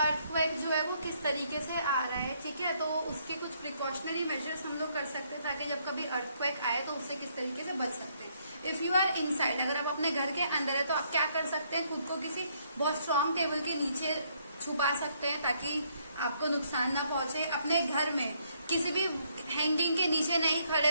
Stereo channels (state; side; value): inverted; both; correlation -0.70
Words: जो है वो किस तरीके से आ रहा है, ठीक है। तो उसके कुछ प्रिकॉशनरी मेजर्स हम लोग कर सकते हैं ताकि जब कभी अर्थक्वेक आए तो उससे किस तरीके से बच सकते हैं। इफ यू आर इनसाइड, अगर आप अपने घर के अंदर है तो आप क्या कर सकते हैं, खुद को किसी बहुत स्ट्रांग टेबल के नीचे छुपा सकते हैं ताकि आपको नुकसान ना पहुंचे। अपने घर में किसी भी हैंगिंग के नीचे नहीं खड़े